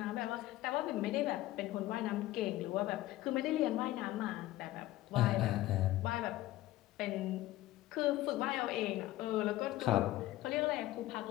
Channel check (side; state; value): right; quieter; 16.1 dB